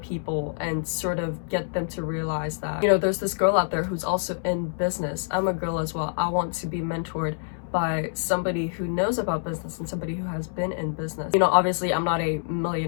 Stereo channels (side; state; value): right; silent; 61 dB below the other